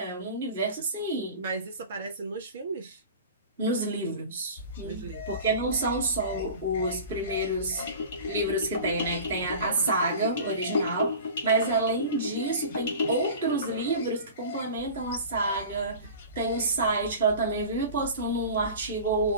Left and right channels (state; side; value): inverted; both; correlation -0.37